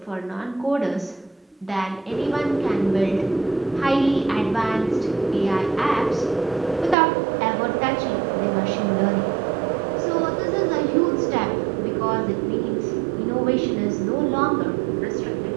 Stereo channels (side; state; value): left; drops out; at 7.0 s